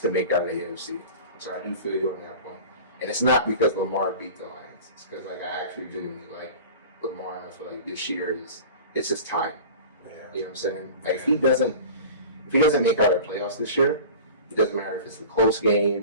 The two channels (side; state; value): both; inverted; correlation -0.37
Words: to make out of the AFC. So I do feel you on that point. And it's not because Lamar beat the Lions. It's because like I actually genuinely like Lamar, and I feel like this year it's just time. Yeah. You know what I'm saying? Like if he doesn't make out the playoffs this year, it doesn't matter if it's a close